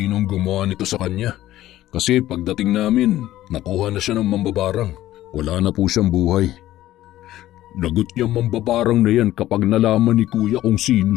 gumawa nito sa kanya. Kasi pagdating namin, nakuha na siya ng mambabarang. Wala na po siyang buhay. Lagot niya mambabarang na yan kapag nalaman ni Kuya kung sino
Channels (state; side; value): quieter; right; 14.4 dB